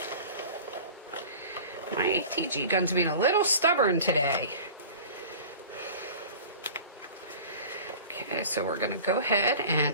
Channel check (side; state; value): both; inverted; correlation -0.40